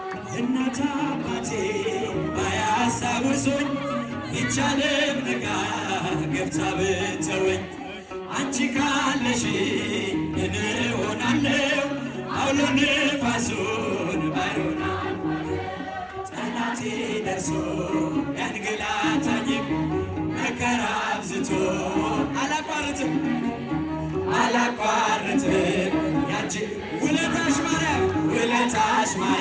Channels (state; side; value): identical; both; correlation 1.00